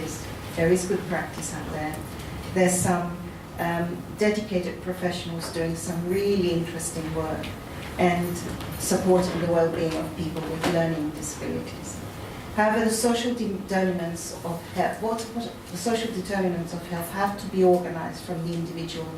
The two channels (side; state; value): both; identical; correlation 1.00